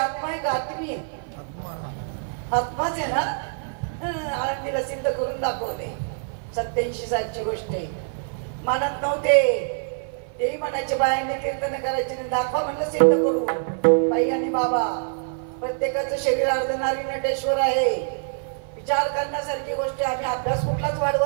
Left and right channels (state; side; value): silent; left; 55 dB below the other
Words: आहे का? आत्मी आहे. आत्माच आहे ना. आळंदीला सिद्ध करून दाखवले. 87 सालची गोष्ट आहे. मानत नव्हते तेही म्हणायचे बायांनी कीर्तन करायचे नाही, दाखवा म्हणलं सिद्ध करू. बाई आणि बाबा प्रत्येकाचं शरीर अर्धनारी नटेश्वर आहे. विचार करण्यासारखी गोष्ट. आम्ही अभ्यास कुठलाच